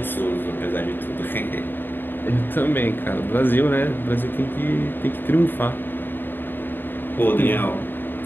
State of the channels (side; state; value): right; late; 0.094 ms